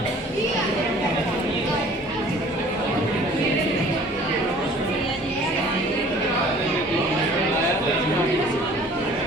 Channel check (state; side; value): normal; both; correlation 0.51